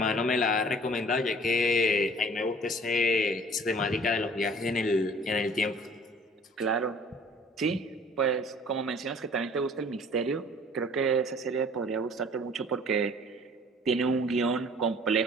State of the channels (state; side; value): normal; both; correlation 0.51